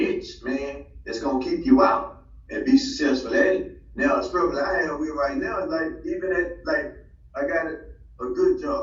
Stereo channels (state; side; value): identical; both; correlation 1.00